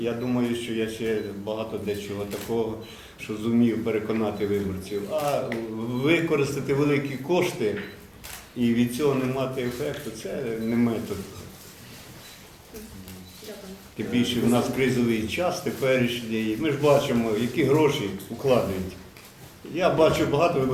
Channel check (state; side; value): identical; both; correlation 1.00